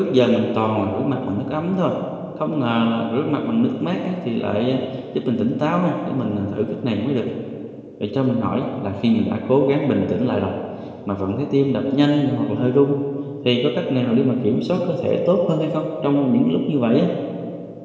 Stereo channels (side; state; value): both; identical; correlation 1.00